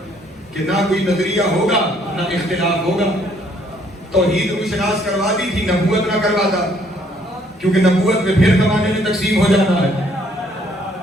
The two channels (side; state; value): both; normal; correlation 0.65